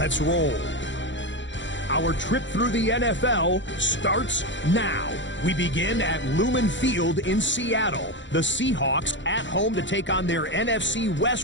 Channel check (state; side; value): late; right; 0.54 ms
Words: roll. Our trip through the NFL starts now. We begin at Lumen Field in Seattle. The Seahawks at home to take on their NFC